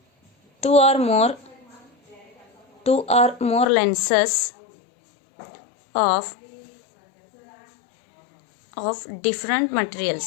two or more lenses of different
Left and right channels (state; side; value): drops out; right; at 3.7 s